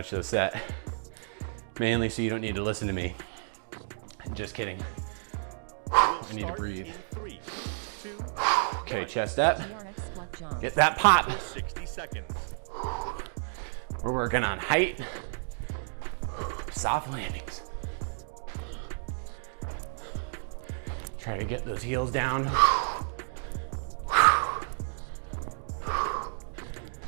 this set, mainly so you don't need to listen to me. Just kidding. I need to breathe. In 3, 2, Okay, 1. chest up. TRX squat jump. Get that pop. For 60 seconds. We're working on height. Soft landings. Try to get those heels down.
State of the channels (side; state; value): left; silent; digital silence